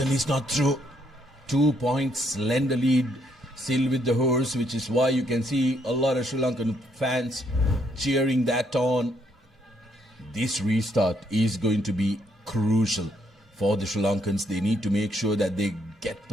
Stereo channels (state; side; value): normal; both; correlation 0.72